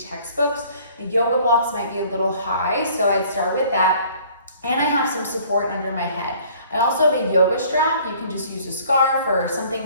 The yoga blocks might be a little high, so I'd start with that. And I have some support under my head. I also have a yoga strap. You can just use a scarf or something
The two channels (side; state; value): both; inverted; correlation -0.54